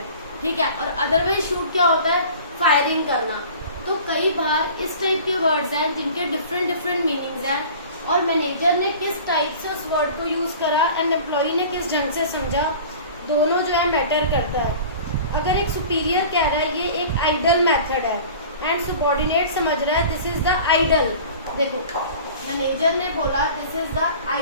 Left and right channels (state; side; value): inverted; both; correlation -0.42